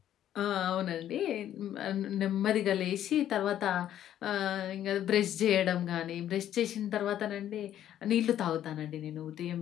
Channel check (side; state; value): right; quieter; 11.3 dB